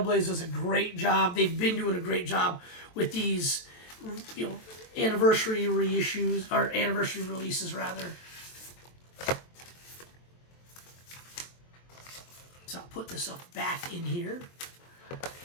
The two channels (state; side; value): late; right; 23 ms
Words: Blade does a great job. They've been doing a great job with these, you know, anniversary reissues, or anniversary releases rather. So I'll put this stuff back in here.